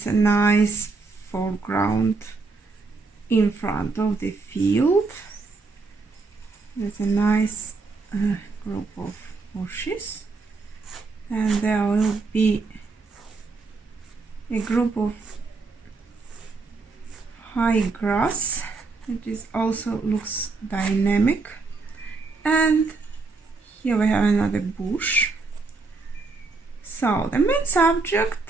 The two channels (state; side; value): quieter; left; 4.0 dB